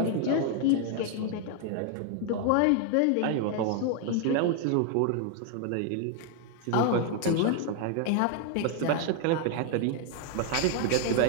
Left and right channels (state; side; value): different; both; correlation 0.00